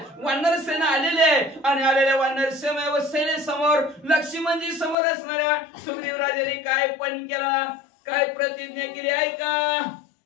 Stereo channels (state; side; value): drops out; right; at 5.0 s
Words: वानर सेना आलेली आहे आणि आलेल्या वानर सेने समोर लक्ष्मणजी समोर असणाऱ्या सुग्रीव राजाने काय पण केला, काय प्रतिज्ञा केली ऐका.